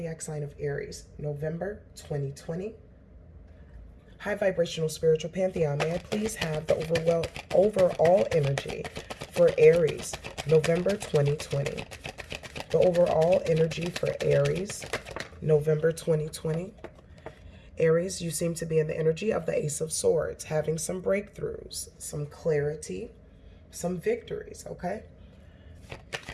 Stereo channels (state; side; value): identical; both; correlation 1.00